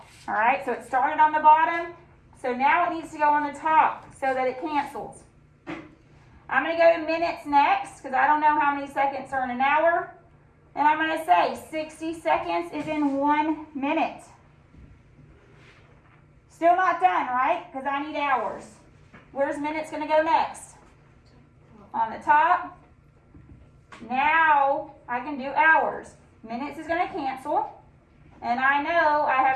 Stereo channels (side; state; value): both; identical; correlation 1.00